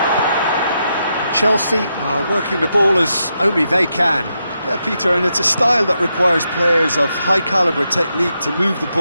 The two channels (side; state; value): both; inverted; correlation -0.83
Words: Chelsea are working the ball as only they can. Yeah, Peter, and it's a style that requires players of high-caliber technique to move the